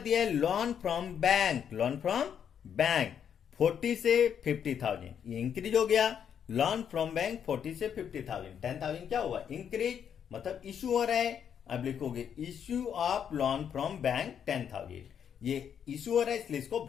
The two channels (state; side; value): quieter; right; 8.3 dB